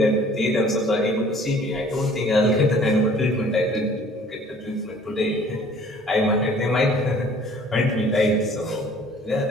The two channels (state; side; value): normal; both; correlation 0.53